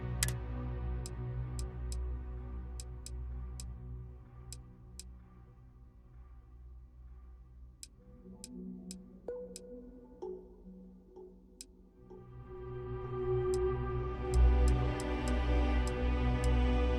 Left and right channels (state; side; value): identical; both; correlation 1.00